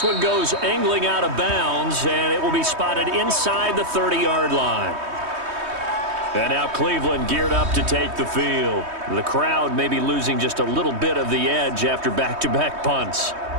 one goes angling out of bounds, and it will be spotted inside the 30-yard line. And now Cleveland geared up to take the field. The crowd may be losing just a little bit of the edge after back-to-back punts.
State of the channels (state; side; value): late; left; 3.2 ms